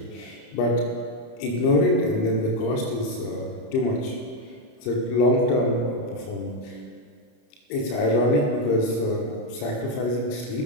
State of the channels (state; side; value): late; right; 31 ms